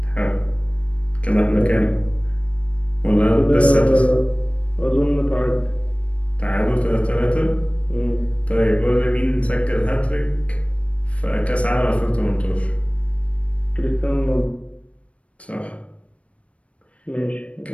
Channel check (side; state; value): right; late; 0.063 ms